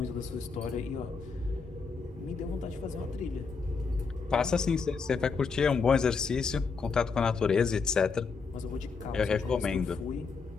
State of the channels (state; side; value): quieter; right; 5.0 dB